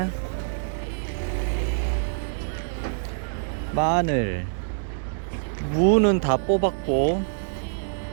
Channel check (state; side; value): silent; left; 59 dB below the other